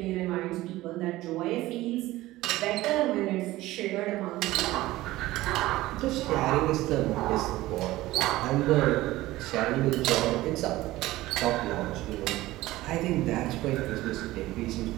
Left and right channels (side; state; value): left; quieter; 17.3 dB